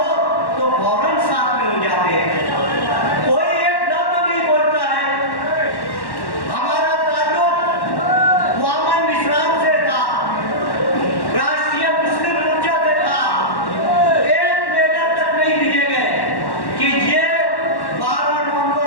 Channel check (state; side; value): late; right; 1.1 ms